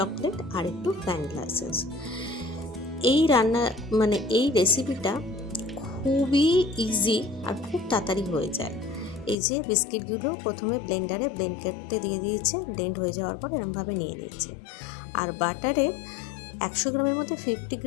আর একটু ভ্যানিলা এসেন্স। এই রান্না এই রেসিপিটা খুবই ইজি আর খুব তাড়াতাড়ি হয়ে যায়। এই যে বিস্কিটগুলো প্রথমে ব্লেন্ডারে ব্লেন্ড করতে দিয়ে দিয়েছে, ব্লেন্ড হয়ে যাওয়ার পর এরমভাবে নিয়ে নিয়েছে। আর বাটারে 100 গ্রামের মধ্যে 50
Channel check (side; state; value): right; drops out; at 9.3 s